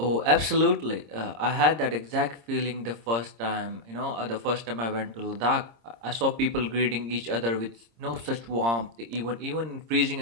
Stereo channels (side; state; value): left; late; 26 ms